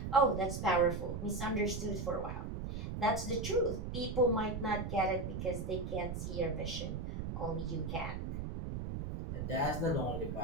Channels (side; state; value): right; noise; rumble, 4 dB below the sound